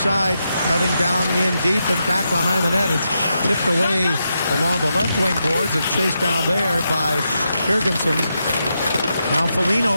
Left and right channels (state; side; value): inverted; both; correlation -0.85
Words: cutting down in deep and back behind the net. It's tipped away along the left wing boards and chased down there by Jurgensen. Now